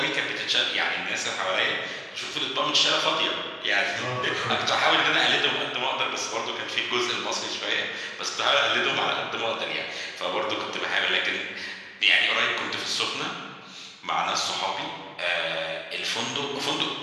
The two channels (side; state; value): both; identical; correlation 1.00